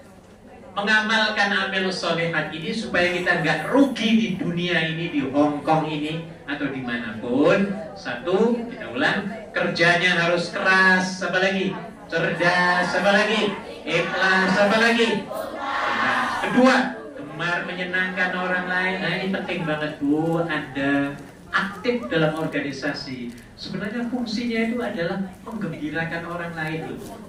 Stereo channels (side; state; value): both; identical; correlation 1.00